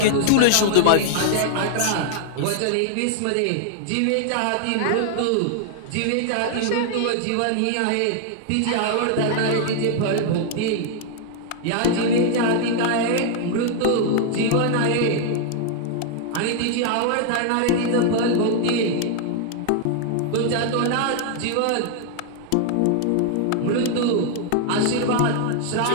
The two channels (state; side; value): different; both; correlation 0.00